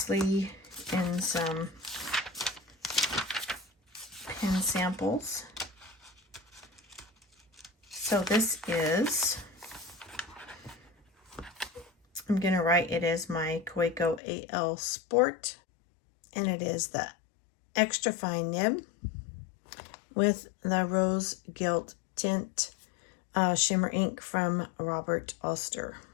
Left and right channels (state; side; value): drops out; right; at 14.2 s